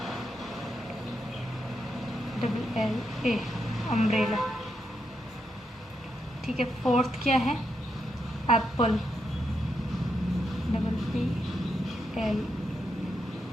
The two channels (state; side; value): normal; both; correlation 0.82